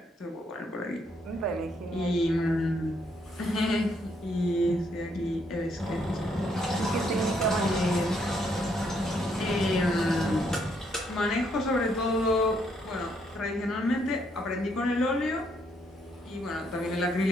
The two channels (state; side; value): normal; both; correlation 0.72